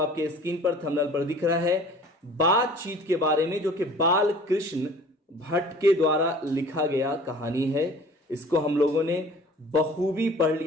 स्क्रीन पर थंबनेल पर दिख रहा है, बातचीत के बारे में, जो कि बाल कृष्ण भट्ट के द्वारा लिखा गया कहानी है। इसको हम लोगों ने बखूबी पढ़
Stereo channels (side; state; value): both; normal; correlation 0.47